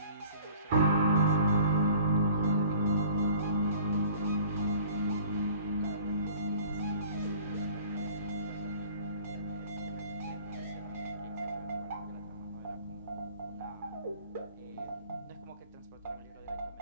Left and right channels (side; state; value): both; inverted; correlation -0.49